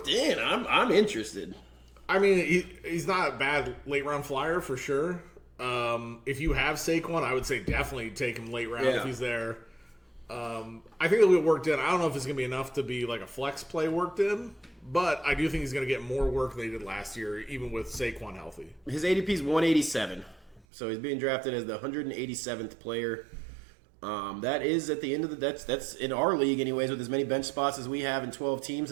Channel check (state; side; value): drops out; left; at 20.6 s